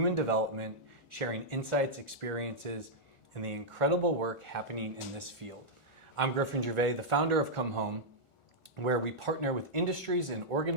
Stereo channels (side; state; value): right; late; 1.4 ms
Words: development, sharing insights, experiences, and the incredible work happening in this field. I'm Griffin Gervais, the founder of Come Home, where we partner with industries and